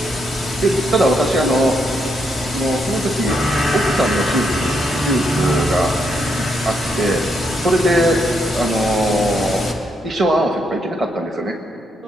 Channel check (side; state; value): both; normal; correlation 0.78